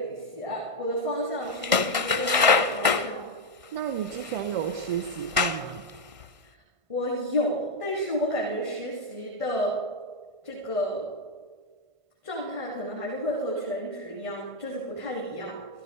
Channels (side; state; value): left; late; 1.5 ms